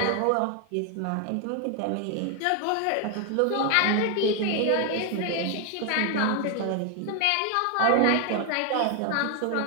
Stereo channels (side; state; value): both; different; correlation 0.00